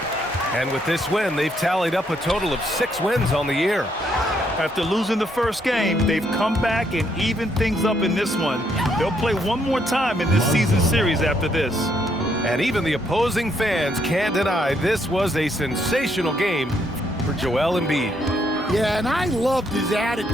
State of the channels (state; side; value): normal; both; correlation 0.73